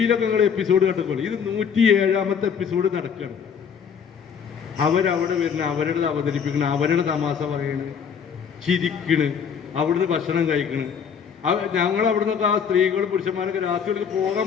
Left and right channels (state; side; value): quieter; right; 7.1 dB